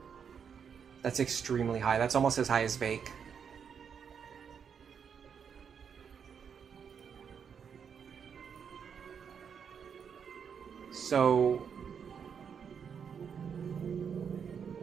That's extremely high. That's almost as high as Vake. So...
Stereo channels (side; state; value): left; quieter; 7.1 dB